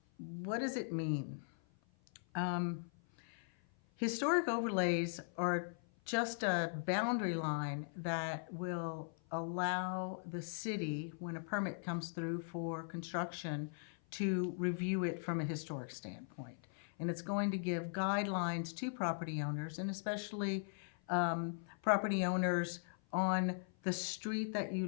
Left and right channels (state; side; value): silent; right; 51 dB below the other